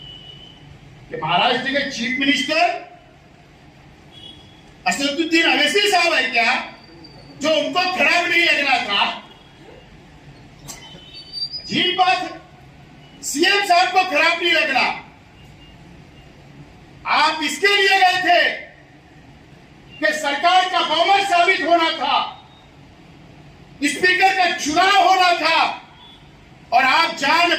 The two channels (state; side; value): identical; both; correlation 1.00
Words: कि महाराष्ट्र के चीफ मिनिस्टर असदुद्दीन अवैसी साहब है क्या, जो उनको खराब नहीं लगना था? अजीब बात है, सीएम साहब को खराब नहीं लगना। आप इसके लिए गए थे कि सरकार का बहुमत साबित होना था, स्पीकर का चुनाव होना था, और आप